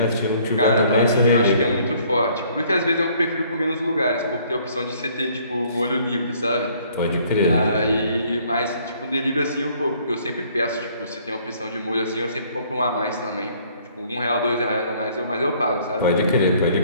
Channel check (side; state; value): both; inverted; correlation -0.60